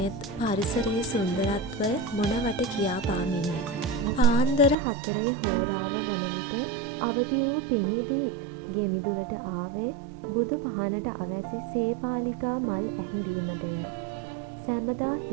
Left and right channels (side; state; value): left; drops out; at 4.8 s